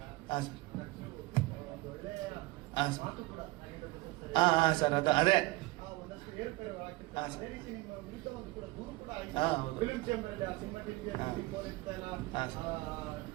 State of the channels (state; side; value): quieter; left; 21.1 dB